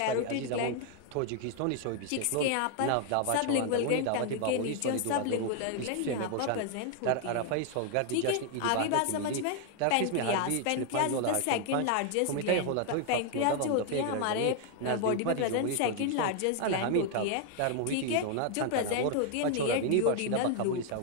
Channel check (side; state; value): both; different; correlation 0.00